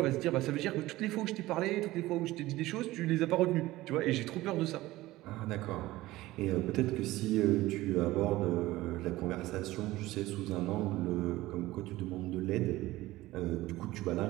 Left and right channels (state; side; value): quieter; left; 17.6 dB